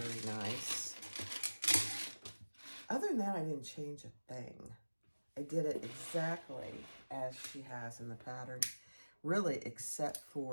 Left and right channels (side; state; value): both; inverted; correlation -1.00